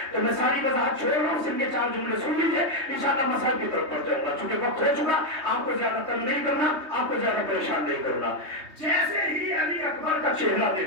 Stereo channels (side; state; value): left; late; 3.2 ms